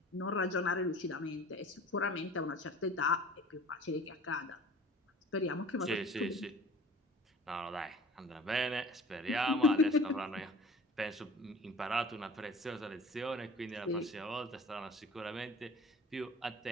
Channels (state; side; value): normal; both; correlation 0.44